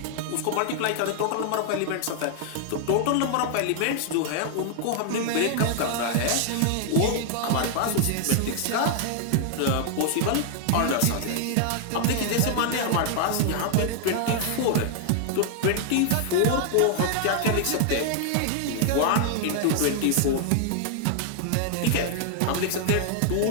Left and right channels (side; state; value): both; different; correlation 0.00